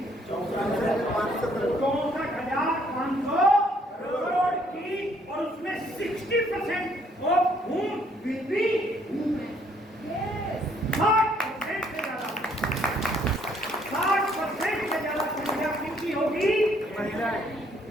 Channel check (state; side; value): normal; both; correlation 0.66